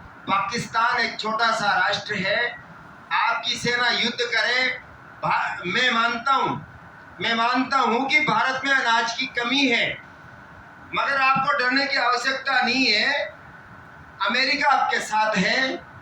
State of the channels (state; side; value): identical; both; correlation 1.00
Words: पाकिस्तान एक छोटा सा राष्ट्र है, आपकी सेना युद्ध करे। मैं मानता हूं कि भारत में अनाज की कमी है, मगर आपको डरने की आवश्यकता नहीं है। अमेरिका आपके साथ है